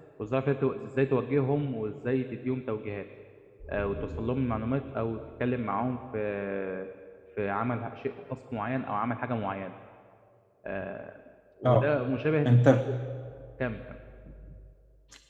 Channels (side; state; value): both; identical; correlation 1.00